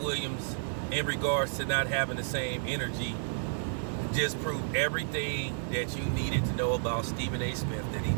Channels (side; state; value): left; silent; digital silence